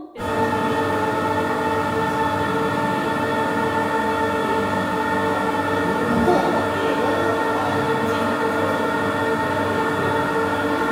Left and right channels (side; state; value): both; identical; correlation 1.00